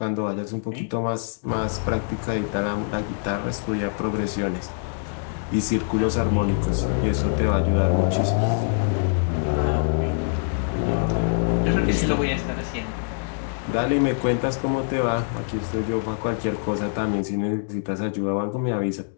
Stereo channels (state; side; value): silent; right; digital silence